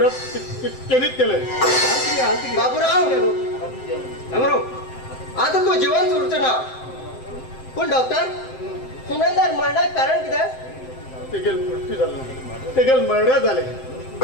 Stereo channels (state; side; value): late; right; 7.7 ms